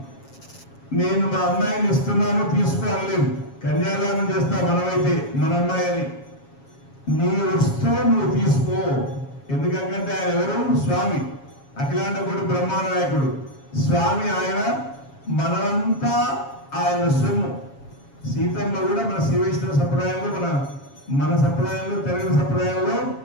నేను మా అమ్మాయిని ఇస్తున్నాను తీసుకోలేదు, కన్యాదానం చేస్తా మనమైతే మన అమ్మాయిని, నీ వస్తూ నువ్వు తీసుకో. ఎందుకంటే ఆయన ఎవరు? స్వామి, అఖిలాండ కోటి బ్రహ్మాండ నాయకుడు స్వామి. ఆయన మనమంతా ఆయన సొమ్ము. సీతమ్మ కూడా మన శ్రీవైష్ణవ సంప్రదాయంలో, మన సంప్రదాయంలో, తెలుగు సంప్రదాయంలో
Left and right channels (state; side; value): late; right; 7.3 ms